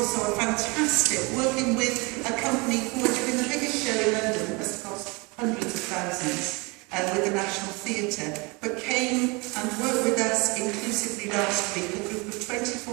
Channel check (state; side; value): quieter; left; 27.6 dB